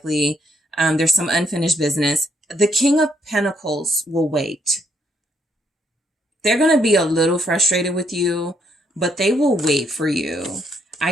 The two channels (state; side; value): normal; both; correlation 0.72